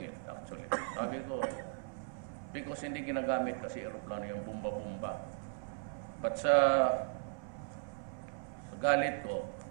it actually. Sabi ko, because hindi ginagamit kasi aeroplano yung bumba-bumba. But sa galit ko,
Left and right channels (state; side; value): silent; left; 53 dB below the other